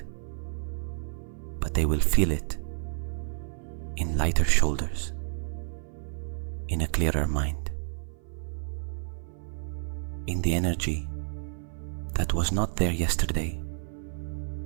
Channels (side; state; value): left; silent; 56 dB below the other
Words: but they will feel it in lighter shoulders, in a clearer mind, in the energy that was not there yesterday